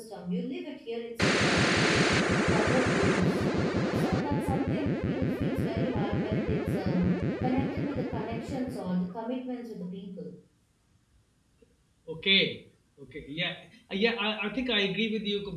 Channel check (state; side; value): identical; both; correlation 1.00